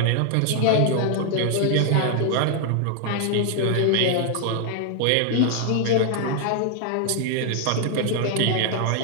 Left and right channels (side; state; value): both; different; correlation 0.00